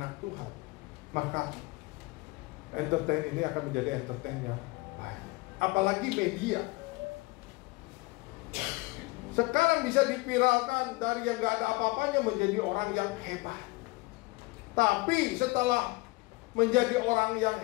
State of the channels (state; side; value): quieter; right; 23.2 dB